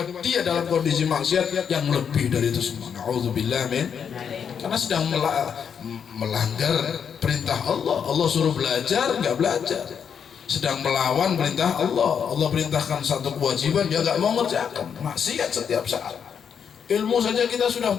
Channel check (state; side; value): quieter; right; 7.4 dB